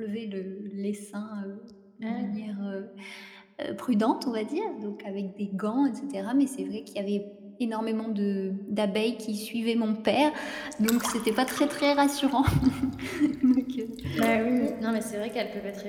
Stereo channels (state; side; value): identical; both; correlation 1.00